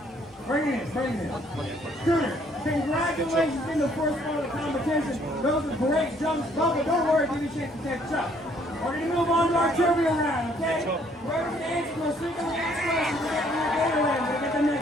Bring it in. Cooter, congratulations in the first part of the competition. Those are great jumps. Bubba, don't worry, give you a chance to catch up. We're going to move on to our trivia round, okay? Whoever can answer those 3 questions, we're getting your Gatorland. We'll get the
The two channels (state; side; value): normal; both; correlation 0.64